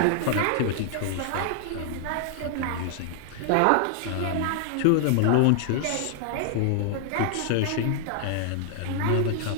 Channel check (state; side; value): different; both; correlation 0.00